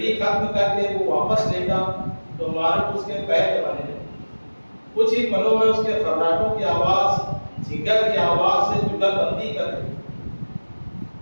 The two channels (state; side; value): inverted; both; correlation -1.00